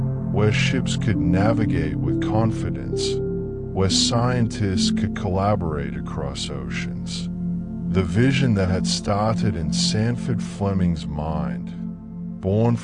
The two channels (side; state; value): both; identical; correlation 1.00